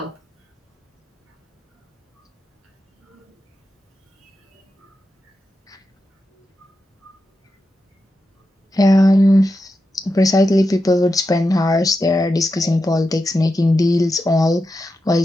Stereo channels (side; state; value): both; normal; correlation 0.89